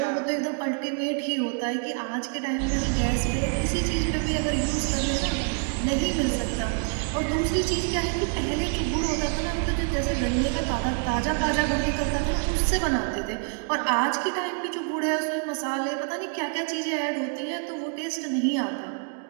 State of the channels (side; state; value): left; quieter; 39.5 dB